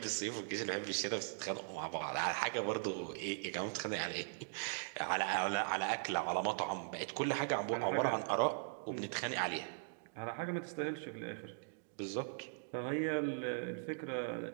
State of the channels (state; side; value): silent; left; digital silence